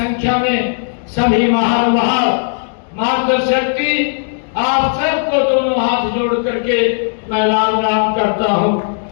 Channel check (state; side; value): silent; right; 69 dB below the other